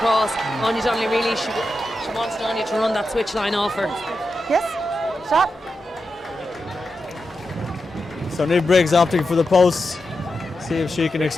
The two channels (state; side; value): normal; both; correlation 0.89